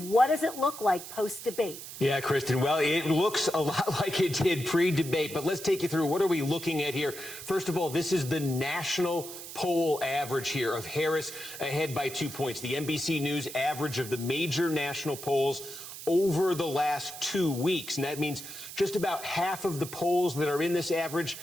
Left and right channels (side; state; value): right; noise; hiss, 11 dB below the sound